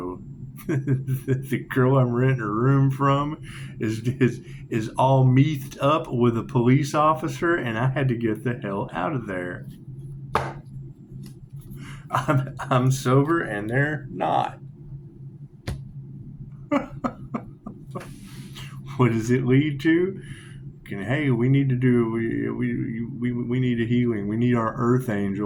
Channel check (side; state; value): both; identical; correlation 1.00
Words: The girl I'm renting a room from is all methed up with a police officer, and I had to get the hell out of there. I'm sober, and they're not. What does it lead to? Hey, we need to do we need a healing. We need our Earth